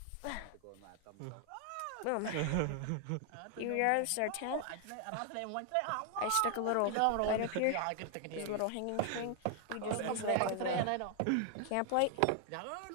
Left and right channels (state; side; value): different; both; correlation 0.00